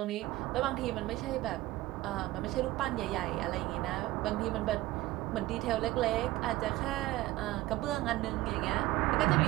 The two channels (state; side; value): quieter; left; 17.5 dB